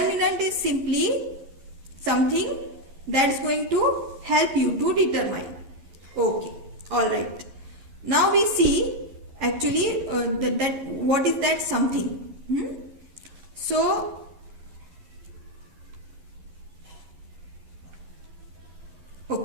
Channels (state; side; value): late; left; 11 ms